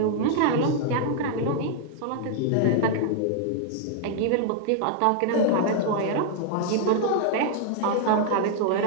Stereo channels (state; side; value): different; both; correlation 0.00